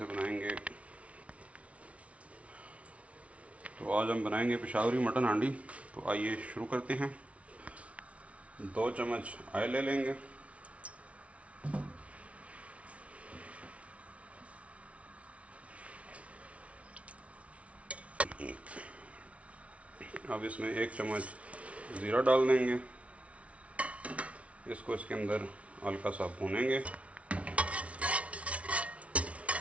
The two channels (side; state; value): left; late; 0.064 ms